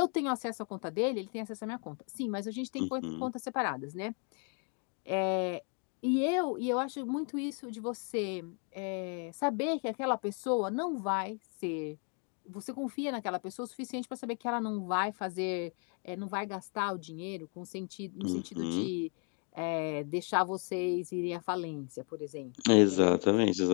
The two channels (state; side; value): quieter; right; 38.6 dB